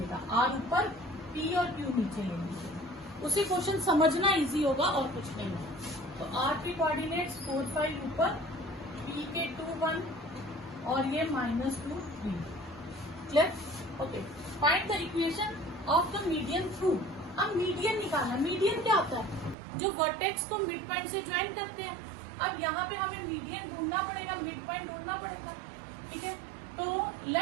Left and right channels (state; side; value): drops out; left; at 19.6 s